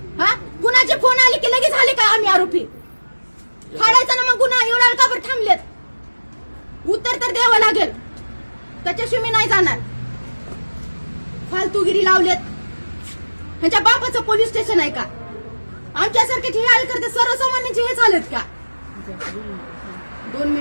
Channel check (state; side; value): inverted; both; correlation -1.00